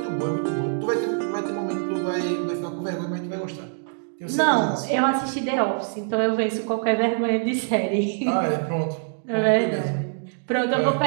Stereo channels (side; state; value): left; silent; digital silence